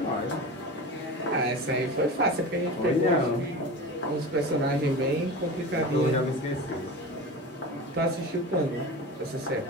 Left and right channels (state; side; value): normal; both; correlation 0.30